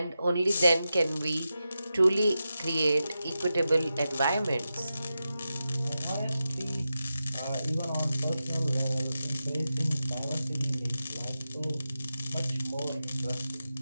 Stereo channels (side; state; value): both; inverted; correlation -0.90